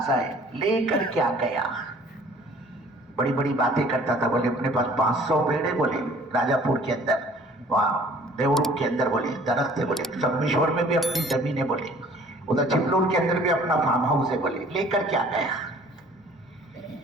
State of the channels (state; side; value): normal; both; correlation 0.53